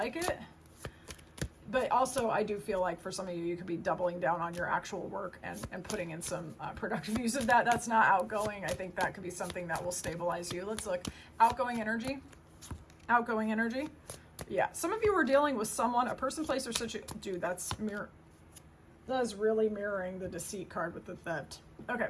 it. But also, I do feel like for some of you, you could be doubling down on your actual work and putting in some productive use of that. That's not outgoing. I think that could be something that will stabilize you. Let's look. Outgoing energy. Outgoing energy. Yeah. Some of you are dealing with someone, a person, place, or situation. Dude, that is really mirroring the deceit card with the theft. Okay.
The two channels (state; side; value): identical; both; correlation 1.00